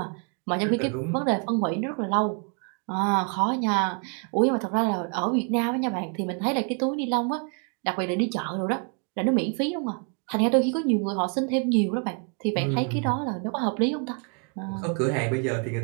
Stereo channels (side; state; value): left; quieter; 38.6 dB